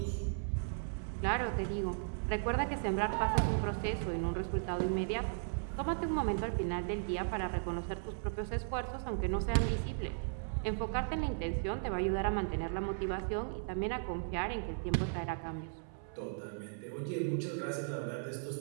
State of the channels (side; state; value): left; silent; 54 dB below the other